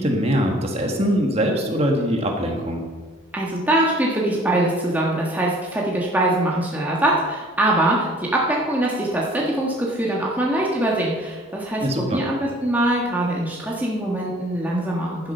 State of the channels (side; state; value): both; normal; correlation 0.53